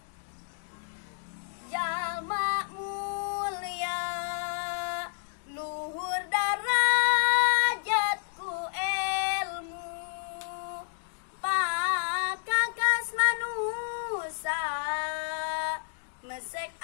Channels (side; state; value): right; silent; digital silence